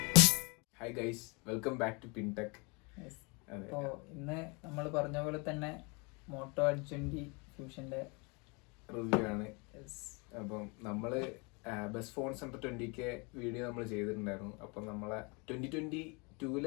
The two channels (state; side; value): quieter; right; 30.5 dB